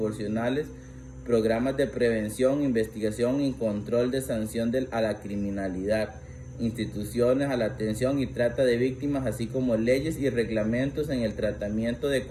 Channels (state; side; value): identical; both; correlation 1.00